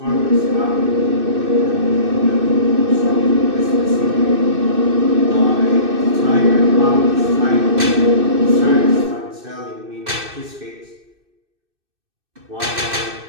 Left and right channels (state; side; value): late; left; 2.6 ms